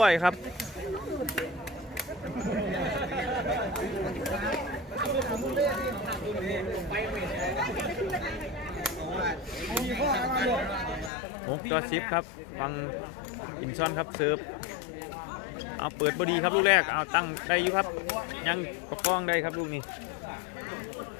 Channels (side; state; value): right; drops out; at 11.1 s